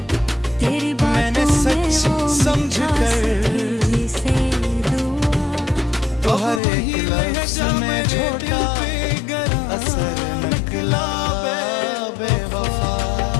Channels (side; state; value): right; drops out; at 6.6 s